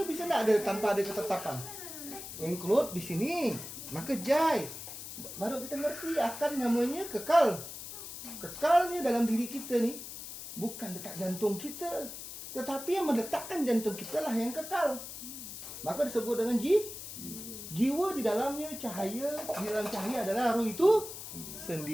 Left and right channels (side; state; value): left; noise; hiss, 10 dB below the sound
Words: bisa nggak ada tanpa ada ketetapan? Include di sini, maka jai. Baru kita ngerti akan namanya kekal. Kekalnya dalam diri kita nih bukan detak jantung kita, tetapi yang meletakkan jantung kita lah yang kekal. Maka disebut dengan jiwa. Di dalamnya cahaya, di dalam cahaya adalah roh itu